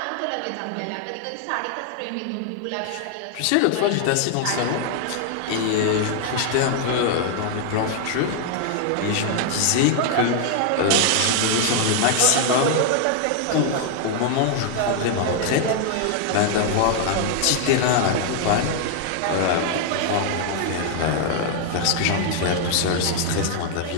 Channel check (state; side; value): different; both; correlation 0.00